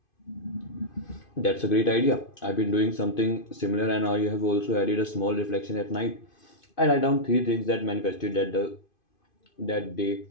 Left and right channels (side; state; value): right; late; 2.5 ms